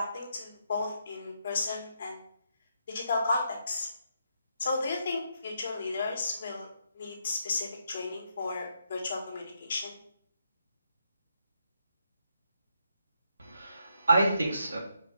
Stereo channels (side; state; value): both; inverted; correlation -0.78